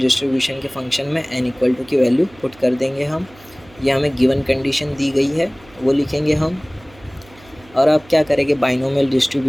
के फंक्शन में n = की वैल्यू पुट कर देंगे हम। ये हमें गिवन कंडीशन दी गई है वो लिखेंगे हम। और अब क्या करेंगे, बाइनोमियल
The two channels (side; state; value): right; noise; hum, 25 dB below the sound